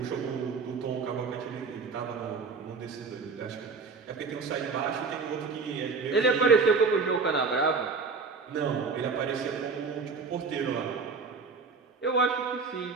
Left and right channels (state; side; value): quieter; left; 4.7 dB